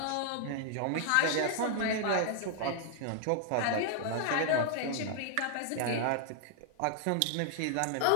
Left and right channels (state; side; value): different; both; correlation 0.00